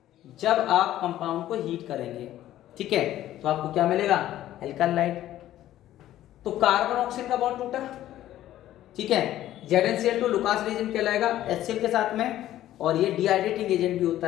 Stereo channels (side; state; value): right; quieter; 13.3 dB